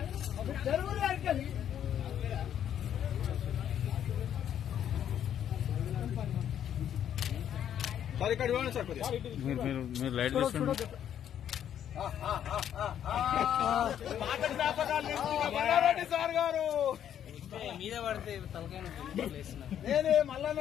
సార్ ఇక్కడ ఇవ్వండి సార్ మీరు లైట్ చూసుకోండి. సార్ గారు మీద పడితే తలకాయ నేనే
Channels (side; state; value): right; quieter; 9.8 dB